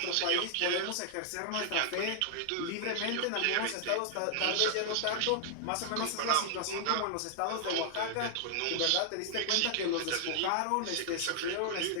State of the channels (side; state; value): both; different; correlation 0.00